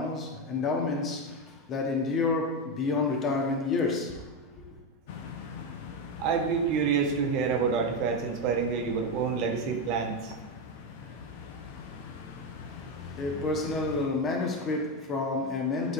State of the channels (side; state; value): both; normal; correlation 0.11